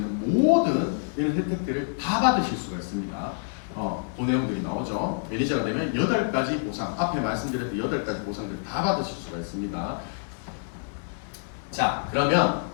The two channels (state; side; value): silent; right; 57 dB below the other